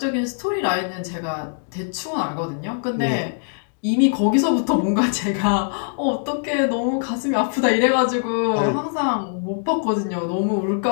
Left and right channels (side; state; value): right; silent; digital silence